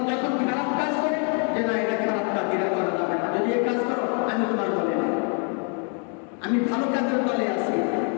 যখন খারাপ কাজ করে, যে না এটা খারাপ কাজ, এটা করা যাবে না, যদি এই কাজ করো আমি তোমার দলে নেই, আমি ভালো কাজের দলে আছি।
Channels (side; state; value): right; quieter; 39.8 dB